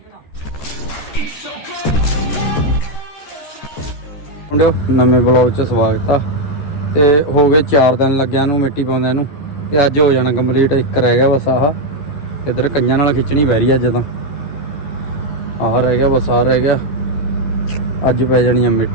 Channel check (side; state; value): right; late; 14 ms